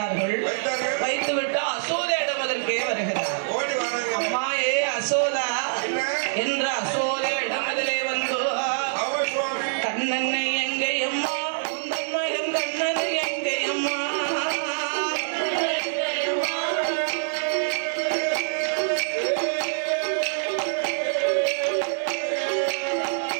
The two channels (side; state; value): left; silent; digital silence